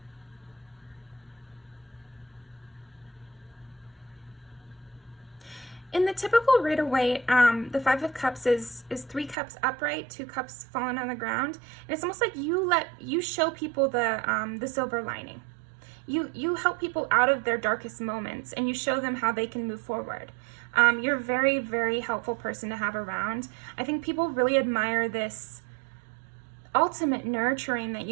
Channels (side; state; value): left; drops out; at 9.3 s